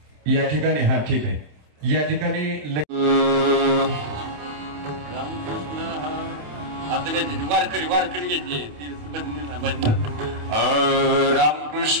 या ठिकाणी हा ठीक आहे. या ठिकाणी वारकरी घेतली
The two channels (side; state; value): left; late; 27 ms